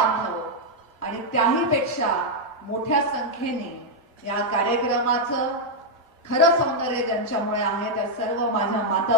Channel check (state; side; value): normal; both; correlation -0.01